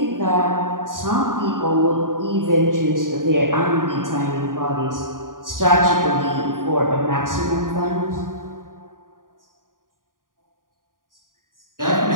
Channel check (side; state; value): left; late; 0.90 ms